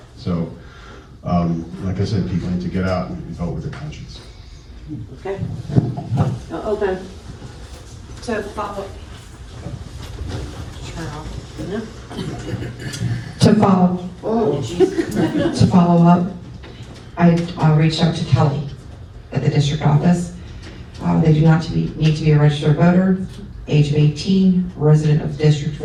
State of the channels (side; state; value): both; identical; correlation 1.00